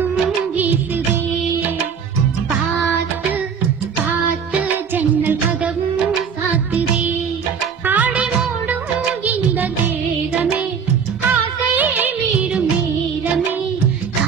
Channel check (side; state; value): left; quieter; 6.7 dB